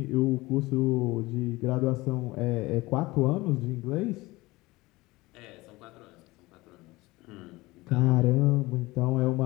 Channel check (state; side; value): quieter; right; 20.8 dB